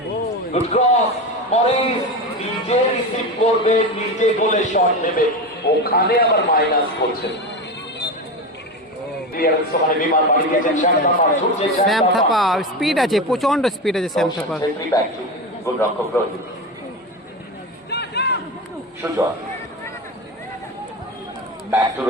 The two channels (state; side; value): normal; both; correlation 0.21